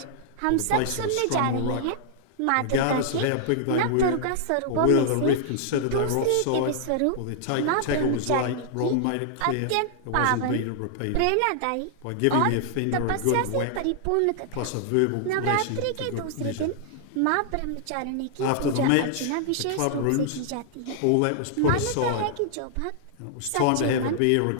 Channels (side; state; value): both; different; correlation -0.01